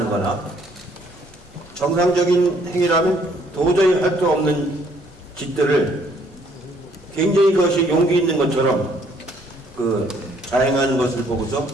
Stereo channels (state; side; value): normal; both; correlation 0.64